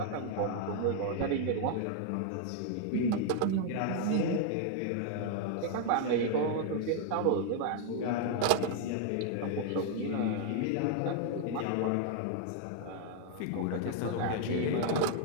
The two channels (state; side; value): different; both; correlation 0.00